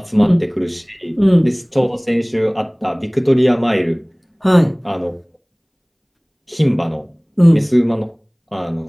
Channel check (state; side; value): identical; both; correlation 1.00